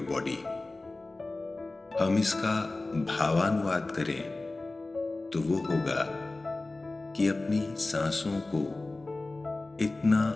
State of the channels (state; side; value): quieter; right; 3.1 dB